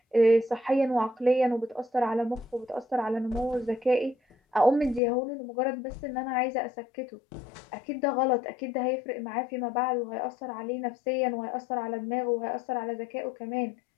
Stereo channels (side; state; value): right; drops out; at 5.0 s